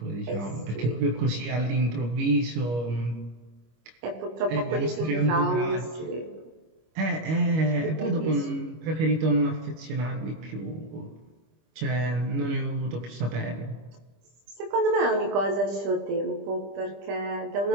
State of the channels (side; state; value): left; late; 25 ms